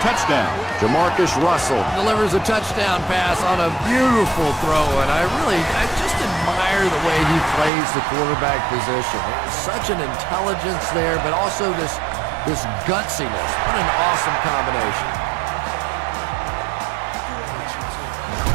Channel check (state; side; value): drops out; left; at 7.7 s